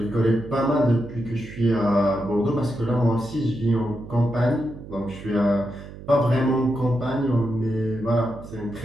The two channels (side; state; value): right; noise; hum, 15 dB below the sound